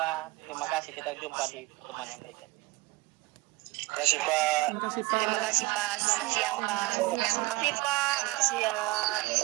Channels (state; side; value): quieter; left; 21.5 dB